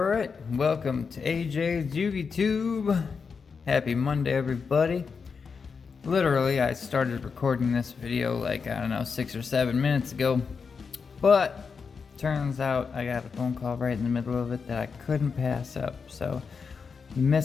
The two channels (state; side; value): quieter; right; 5.5 dB